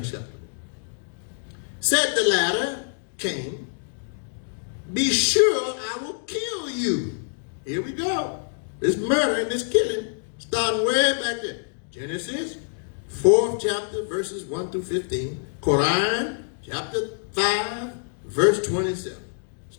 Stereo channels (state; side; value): silent; right; digital silence